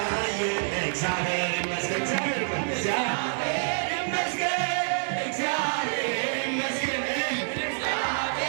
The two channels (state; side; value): silent; left; 60 dB below the other